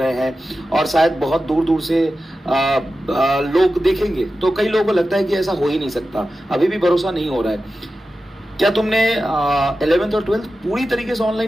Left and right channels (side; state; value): both; normal; correlation 0.93